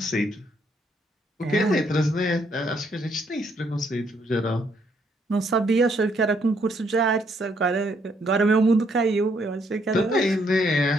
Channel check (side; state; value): both; normal; correlation 0.71